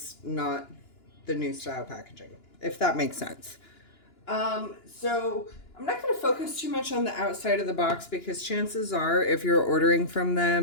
not the new style packaging, if that makes sense. So I'm not going to focus too much on the outside of the box because chances are, if you're ordering from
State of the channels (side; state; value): right; late; 2.9 ms